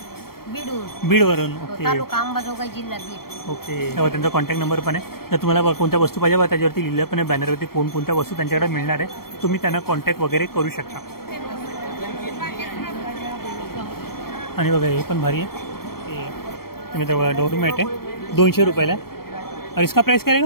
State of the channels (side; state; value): right; late; 0.94 ms